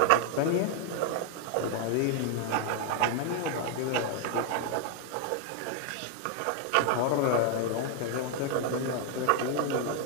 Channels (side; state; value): both; different; correlation 0.00